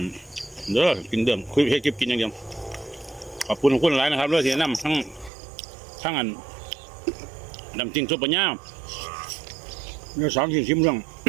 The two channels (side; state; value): left; drops out; at 5.3 s